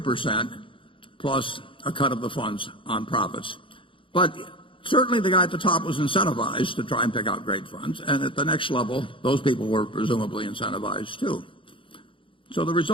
plus a cut of the funds on profits. But certainly the guy at the top was incentivized to try and pick out great funds, and at the next level, those people were presumably incentivized too. So the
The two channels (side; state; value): right; late; 0.25 ms